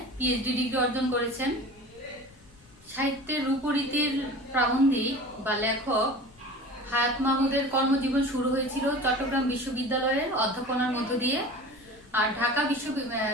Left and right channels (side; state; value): left; noise; rumble, 27 dB below the sound